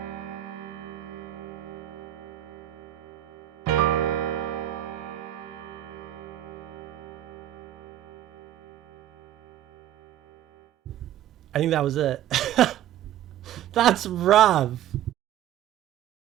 I think that was it. That's rough.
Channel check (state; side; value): quieter; left; 12.3 dB